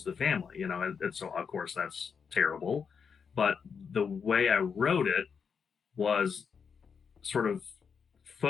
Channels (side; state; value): right; quieter; 6.3 dB